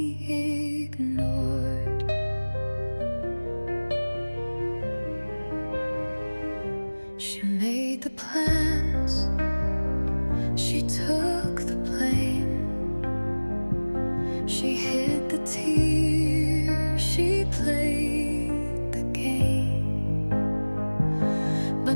ignored. She made the plans, she took the blame. She hid the tears, she played the game. But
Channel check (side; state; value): both; inverted; correlation -1.00